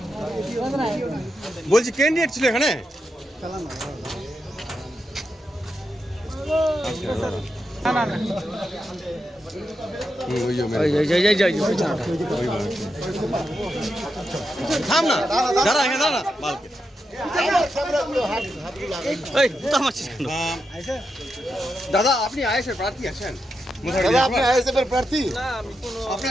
বলছি ক্যান্ডিডেট ছিল এখানে থাম না দাঁড়া এখানে দাঁড়া বালকে এই তো আমার দাদা আপনি আইএসএফ প্রার্থী আছেন দাদা আপনি আইএসএফ এর প্রার্থী না আমি কোনো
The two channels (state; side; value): normal; both; correlation 0.86